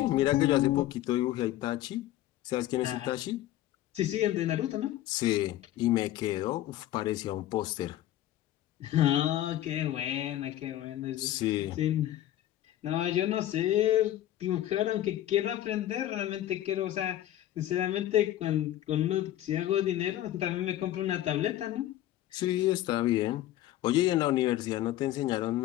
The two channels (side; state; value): right; quieter; 13.5 dB